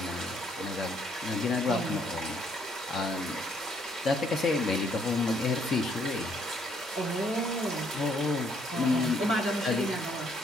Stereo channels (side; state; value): both; normal; correlation 0.68